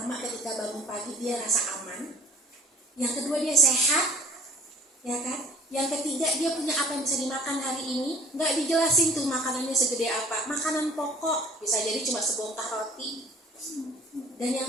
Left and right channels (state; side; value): normal; both; correlation 0.53